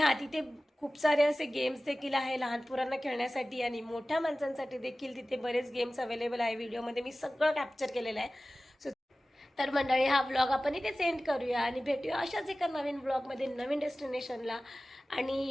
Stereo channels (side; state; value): both; normal; correlation 0.97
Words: तिथे खूप सारे असे गेम्स देखील आहे लहान पोरांना खेळण्यासाठी आणि मोठ्या माणसांसाठी देखील तिथे बरेच गेम्स अवेलेबल आहे. व्हिडिओमध्ये मी सगळं कॅप्चर केलेलं आहे. सो तर मंडळी हा व्लॉग आपण इथे सेंड करूया आणि भेटूया अशाच एका नवीन व्लॉगमध्ये नवीन डेस्टिनेशनला.